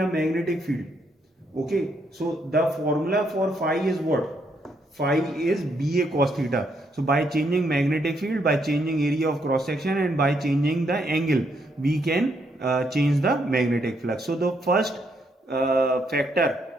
magnetic field. Okay, so the formula for phi is what? phi is BA cos theta. So by changing magnetic field, by changing area of cross section, and by changing the angle, we can change the magnetic flux. So the first factor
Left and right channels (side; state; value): both; normal; correlation 0.75